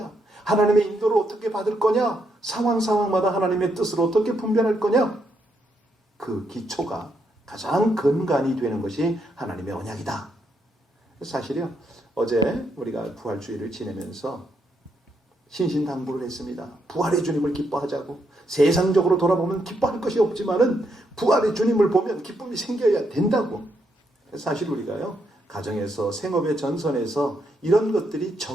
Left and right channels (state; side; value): normal; both; correlation 0.78